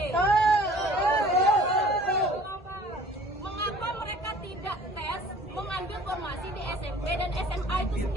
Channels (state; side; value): normal; both; correlation 0.50